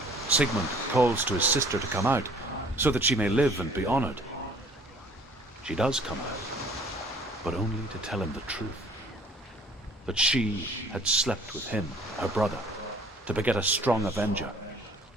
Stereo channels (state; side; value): normal; both; correlation 0.54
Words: Sigmund calls to his sister to come out so that she may live and be honored. She does come out, but only to tell him the truth. That she had slept with him, her brother, to beget a strong avenger.